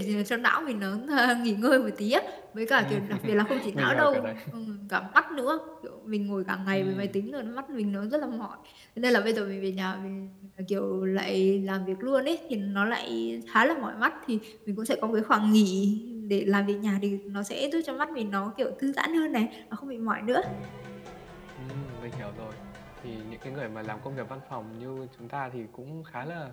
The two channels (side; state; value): both; identical; correlation 1.00